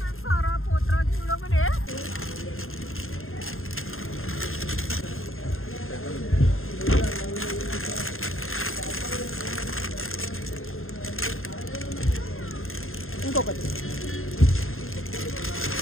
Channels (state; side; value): late; right; 0.61 ms